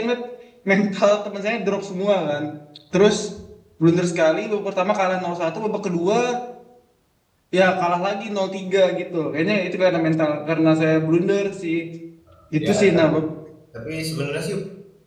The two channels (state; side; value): identical; both; correlation 1.00